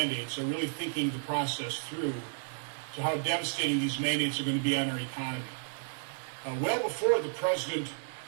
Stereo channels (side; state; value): left; silent; 56 dB below the other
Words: are really thinking the process through to how devastating these mandates are going to be on our economy. Well before the president